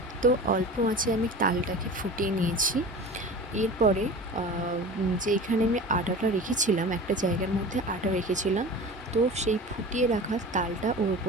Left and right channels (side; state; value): both; normal; correlation 0.35